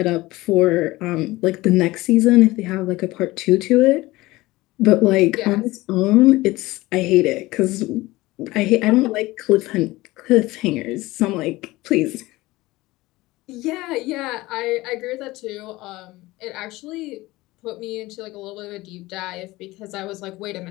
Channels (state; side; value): quieter; right; 19.5 dB